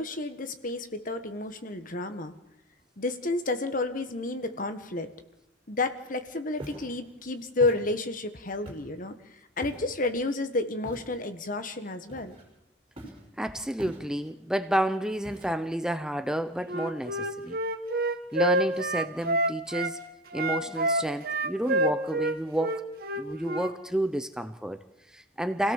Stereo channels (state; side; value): normal; both; correlation 0.30